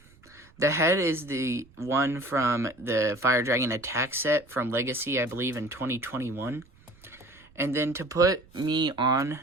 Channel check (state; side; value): noise; right; rumble, 27 dB below the sound